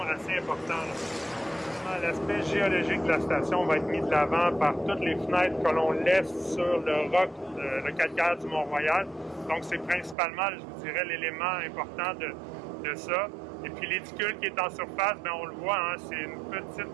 assez important. L'aspect géologique de la station va être mis de l'avant par toutes les fenêtres que l'on laisse sur le roc, le calcaire du Mont-Royal. Donc, c'est principalement, je vous dirais, l'élément important de ça. Et puis, l'éticule qui est en surface, bien, on le voit, hein, c'est une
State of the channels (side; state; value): left; drops out; at 10.2 s